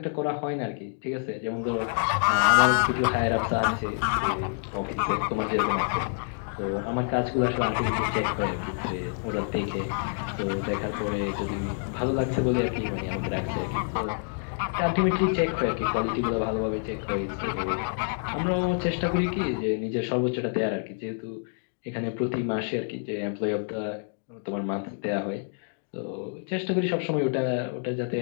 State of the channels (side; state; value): right; silent; digital silence